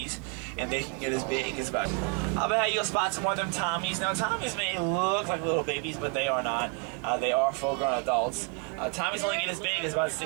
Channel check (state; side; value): quieter; left; 35.9 dB